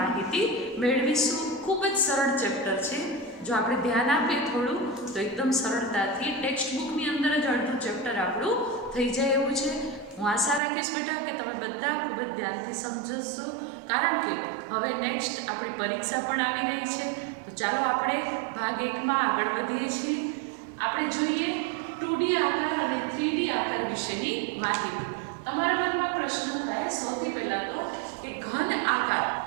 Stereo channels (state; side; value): drops out; left; at 10.6 s